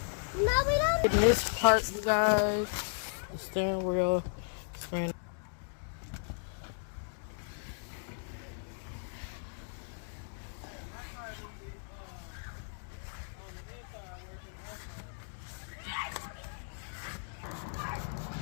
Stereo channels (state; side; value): silent; right; digital silence